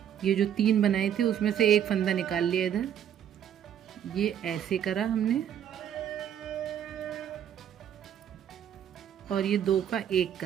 ये जो 3 बनाए थे उसमें से एक फंदा निकाल लिया इधर, ये ऐसे करा हमने और ये 2 का 1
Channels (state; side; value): quieter; left; 9.6 dB